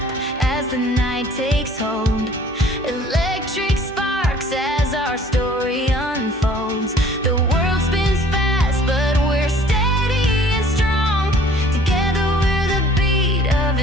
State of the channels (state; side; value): normal; both; correlation 0.53